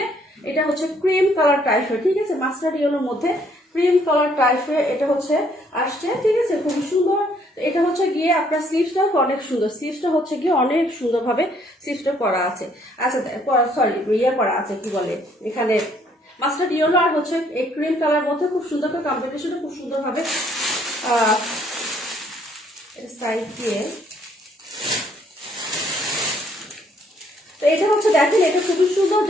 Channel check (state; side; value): normal; both; correlation 0.66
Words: এটা হচ্ছে ক্রিম কালার টাইপের। ঠিক আছে, মাস্টার্ড ইয়েলোর মধ্যে ক্রিম কালার টাইপের এটা হচ্ছে আসছে। ঠিক আছে, খুবই সুন্দর। এটা হচ্ছে গিয়ে আপনার স্লিভসটা অনেক সুন্দর, স্লিভসটা হচ্ছে গিয়ে অনেক সুন্দরভাবে স্লিভসটা করা আছে। আচ্ছা সরি ইয়ে করা আছে, কি বলে এখানে মাস্টার্ড ইয়েলো আর হচ্ছে এই ক্রিম কালার মধ্যে খুব সুন্দর করে কম্বিনেশনটা খুব সুন্দরভাবে সাইড দিয়ে। তো এটা হচ্ছে দেখেন, এটা খুবই সুন্দর,